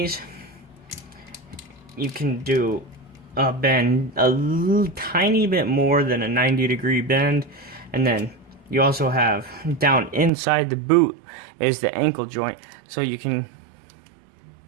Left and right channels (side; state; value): left; drops out; at 10.3 s